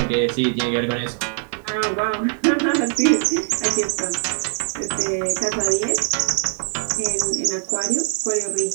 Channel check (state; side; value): silent; left; 56 dB below the other